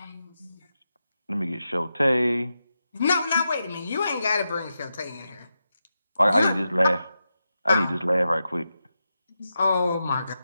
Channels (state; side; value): inverted; both; correlation -0.89